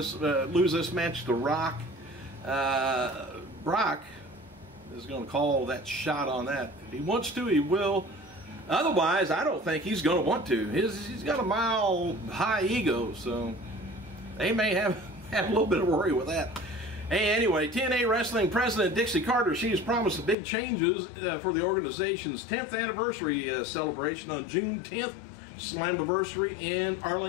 this match to Rock. Brock is going to call that shot on that. If he wants to, he will. Otherwise, I don't think he's going to want to. He's got a mile high ego, so they may have a little bit of worry with that. Hey, anyway, TNA Wrestling President Dixie Carter, she has promised big changes for the organization's 10th anniversary celebration on June 10th, Slammiversary in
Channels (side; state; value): right; drops out; at 20.4 s